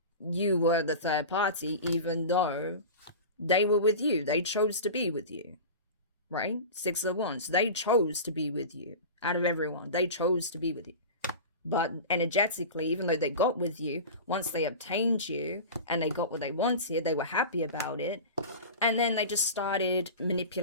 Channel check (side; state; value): both; inverted; correlation -0.31